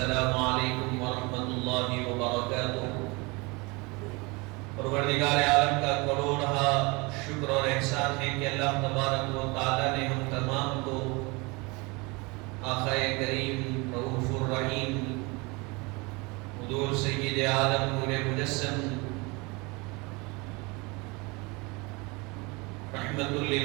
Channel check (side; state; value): left; quieter; 26.7 dB